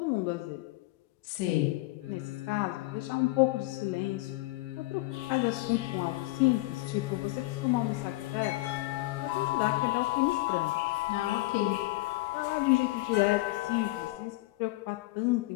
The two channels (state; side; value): quieter; right; 20.0 dB